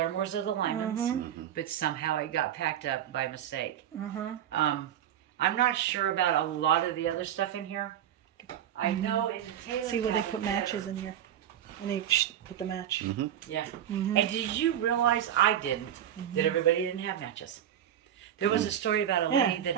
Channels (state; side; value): quieter; left; 10.5 dB